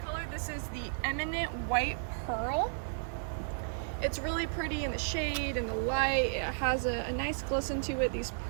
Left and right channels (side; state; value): left; silent; digital silence